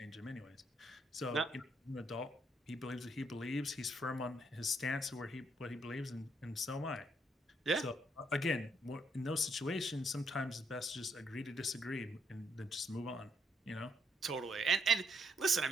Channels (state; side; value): normal; both; correlation 0.73